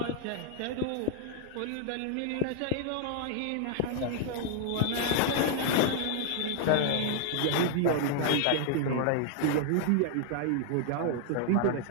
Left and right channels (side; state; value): both; different; correlation 0.00